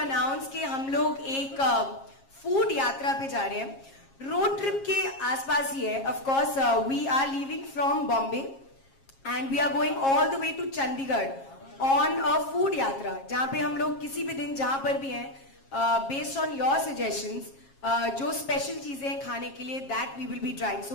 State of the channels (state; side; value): late; right; 7.4 ms